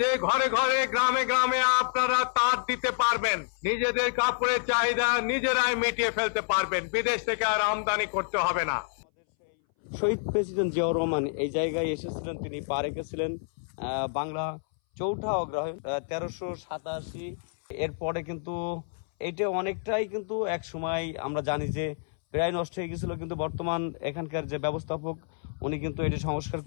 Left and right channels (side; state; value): right; silent; 59 dB below the other